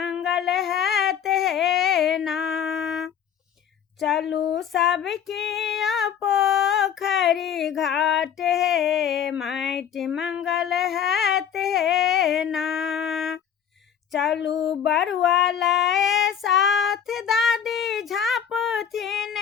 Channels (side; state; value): right; quieter; 8.5 dB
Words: हैत हे ना। चलू सब किया पोखरी घाट हे, माटि मंगल हैत हे ना। चलू बरुआ लाए साथ, दादी झाँपथिन